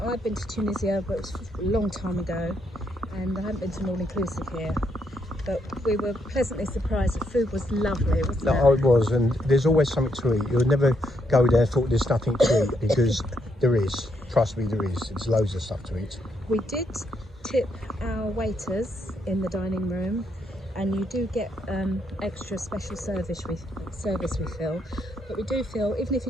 been to Tunisia, but it was a long time ago, and I haven't been to an all-inclusive here. But we were pleasantly surprised. The food was lovely, wasn't it? No, it was, and there's always something to eat. You'll never go there and thought there's nothing to eat, because there is. Trust me, there is. There's loads of stuff to eat. We did tip our waiters in the dining room, and you do get extra special service we feel. But we do feel, even if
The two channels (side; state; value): both; normal; correlation 0.76